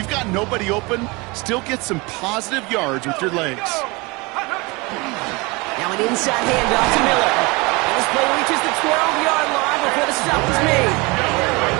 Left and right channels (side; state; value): left; quieter; 25.9 dB